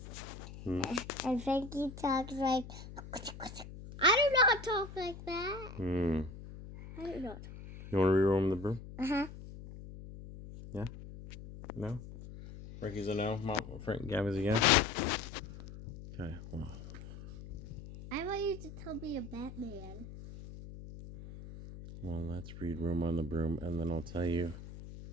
Hmm? and Frankie talks like, I do not talk like that. I do not. You want to reroll the broom? Uh-huh. Yeah? No? Frankie's a no? Gabby's a yes? Okay, well. I want you to tell me a Batman. Well, let's read Room on the Broom, and then I'll tell you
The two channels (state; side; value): noise; left; hum, 13 dB below the sound